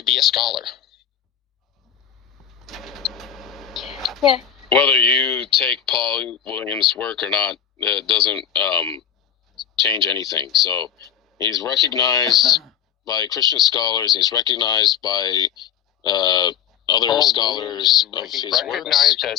be a scholar. Yeah. Whether you take Paul Williams' work or not, it doesn't change anything. So he's recognized by Christian scholars. He's recognized by other scholars of his works. Recognized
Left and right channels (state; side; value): quieter; right; 9.2 dB